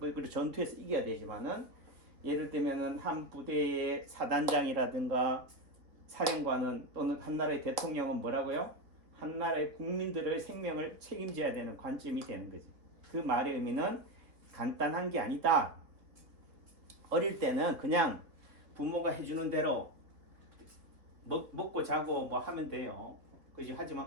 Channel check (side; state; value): left; late; 3.3 ms